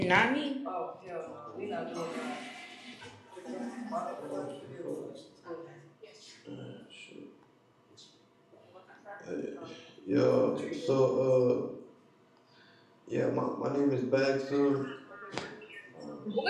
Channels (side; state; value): both; identical; correlation 1.00